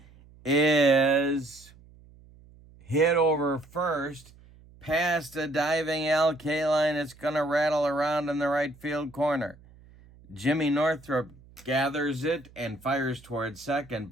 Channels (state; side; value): noise; right; hum, 25 dB below the sound